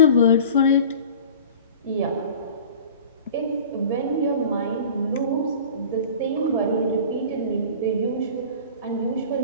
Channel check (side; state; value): both; inverted; correlation -0.41